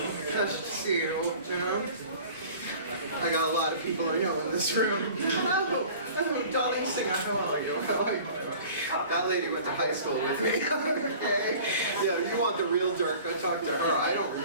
nice to see you, you know? I got a lot of people I know in this room. Oh, Dolly Singer, how are you? That lady went to high school with me. Okay. Yeah, you want the real dirt, go talk to her. I don't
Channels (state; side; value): inverted; both; correlation -0.44